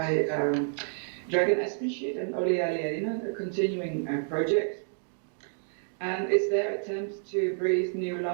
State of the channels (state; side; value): silent; left; digital silence